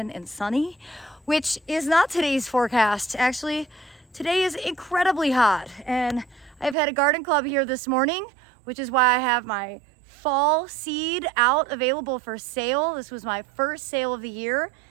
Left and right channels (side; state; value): left; drops out; at 6.8 s